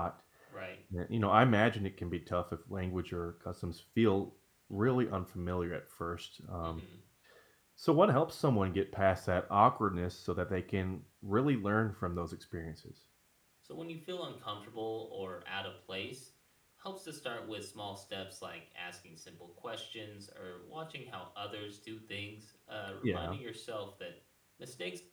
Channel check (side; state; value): both; identical; correlation 1.00